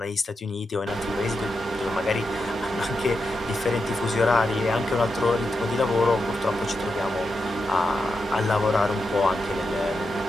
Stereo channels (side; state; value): both; normal; correlation 0.87